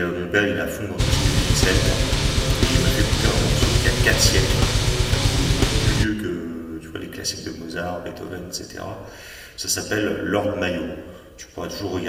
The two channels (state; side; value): identical; both; correlation 1.00